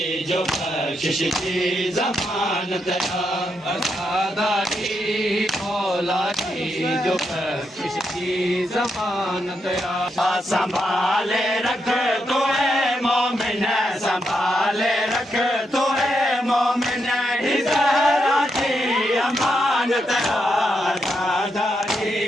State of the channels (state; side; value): normal; both; correlation 0.81